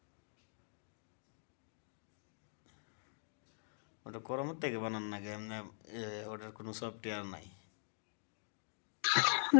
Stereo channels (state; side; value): silent; right; digital silence